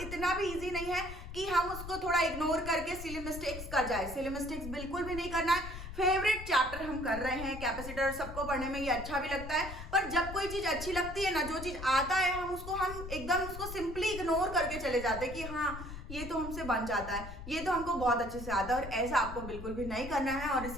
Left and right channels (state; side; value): noise; left; rumble, 10 dB below the sound